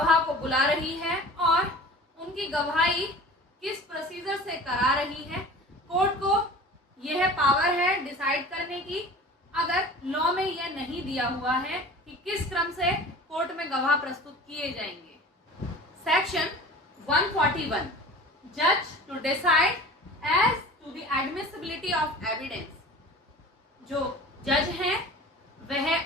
को बुला रही है और उनकी गवाही किस प्रोसीजर से करा रही है। कोर्ट को यह पावर है डिसाइड करने की, अगर लॉ में यह नहीं दिया हुआ है कि किस क्रम से कोर्ट में गवाह प्रस्तुत किए जाएंगे। सेक्शन 141 जज to decide as to the admissibility of evidence. जो जज हैं वह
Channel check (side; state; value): both; normal; correlation 0.40